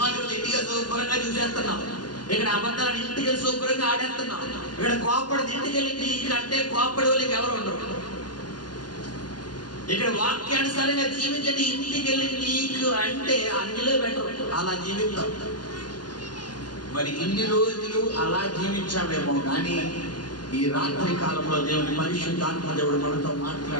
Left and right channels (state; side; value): late; right; 0.70 ms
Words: చూసి ఇంటికి శుభ్రంగా చూసేస్తున్నావు. ఇక్కడ అబద్ధాలను ఇంటికి వెళ్ళి శుభ్రంగా ఆడేస్తున్నావు. ఇక్కడ కోపడి ఇంటికి వెళ్ళి నీకంటే కోపడి వాళ్ళకి ఎవరు ఉండరు. ఇక్కడ వాక్యానుసారంగా జీవించండి. ఇంటికి వెళ్ళి నీకు అంటే అన్నిలో బెటర్. అలా జీవిస్తాం. మరి ఇన్ని రోజులు అలా జీవించామేమో కానీ ఈ రాత్రి కాలంలో దేవుని పరిశుద్ధాత్మ దేవుడు మనతో